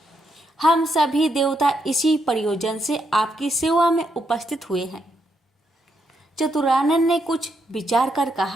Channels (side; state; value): both; normal; correlation 0.79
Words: हम सभी देवता इसी प्रयोजन से आपकी सेवा में उपस्थित हुए हैं। चतुरानन ने कुछ विचार कर